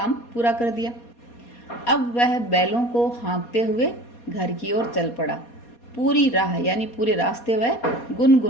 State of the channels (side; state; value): right; late; 4.2 ms